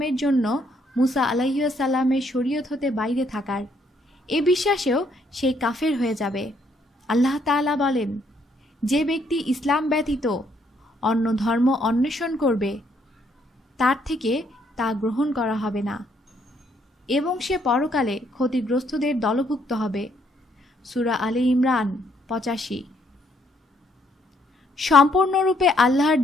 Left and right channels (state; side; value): normal; both; correlation 0.70